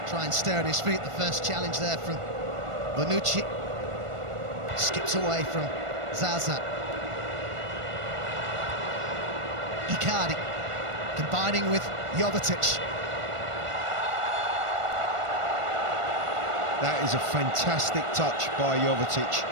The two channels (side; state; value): left; late; 1.5 ms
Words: Try and stay on his feet. The first challenge there from Bonucci. Skips away from Zaza. Icardi combining with Jovetić. That is a fantastic touch by Jovetić